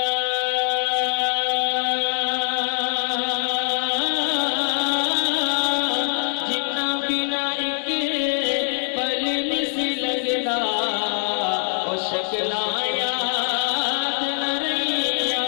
شکلاں یاد نہ رہیاں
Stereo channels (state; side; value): silent; right; 63 dB below the other